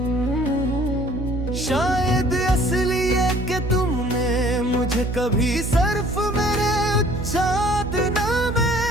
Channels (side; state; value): right; noise; hum, 4 dB below the sound